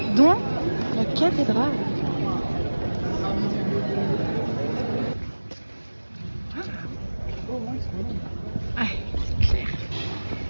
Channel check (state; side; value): inverted; both; correlation -1.00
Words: dont la cathédrale. Ah, c'est clair.